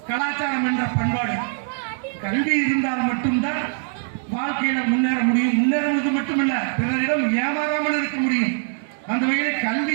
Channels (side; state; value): left; silent; 64 dB below the other